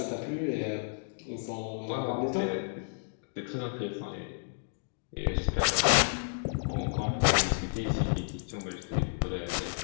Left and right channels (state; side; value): silent; right; digital silence